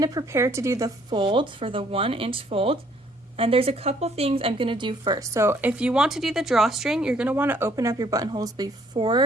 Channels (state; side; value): normal; both; correlation 0.63